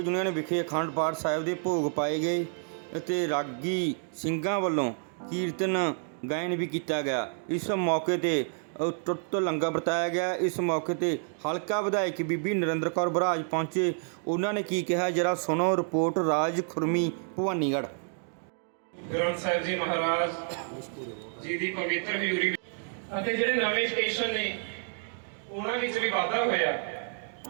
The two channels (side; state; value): left; silent; 58 dB below the other